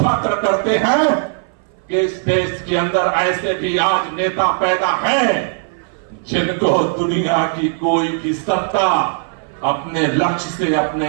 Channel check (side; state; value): left; silent; 59 dB below the other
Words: करते हैं कि इस देश के अंदर ऐसे भी आज नेता पैदा हैं जिनको दुनिया की कोई भी सत्ता अपने लक्ष्य से,